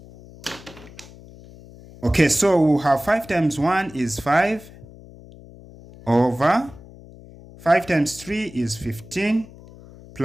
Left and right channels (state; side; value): noise; left; hum, 20 dB below the sound